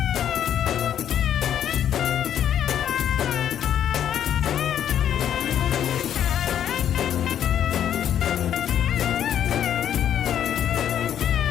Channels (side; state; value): right; quieter; 9.9 dB